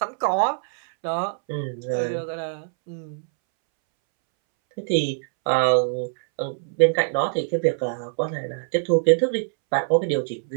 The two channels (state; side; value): silent; left; 63 dB below the other